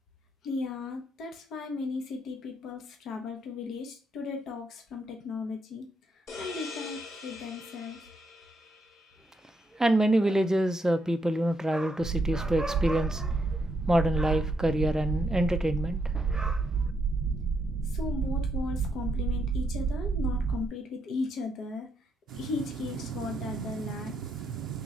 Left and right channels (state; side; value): normal; both; correlation 0.78